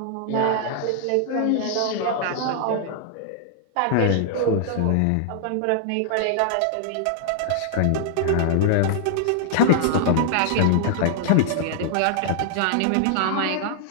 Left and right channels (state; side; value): different; both; correlation -0.01